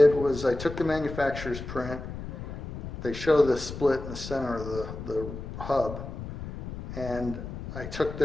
was I took the manufacturer's print. They show the split in the center of the hub, and I took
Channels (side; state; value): left; noise; rumble, 9 dB below the sound